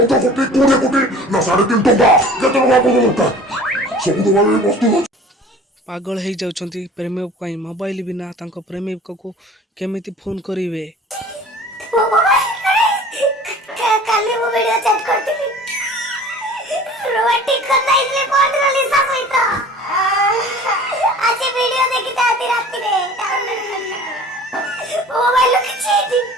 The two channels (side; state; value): both; normal; correlation 0.44